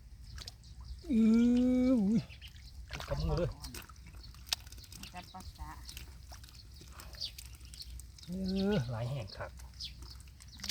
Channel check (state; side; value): identical; both; correlation 1.00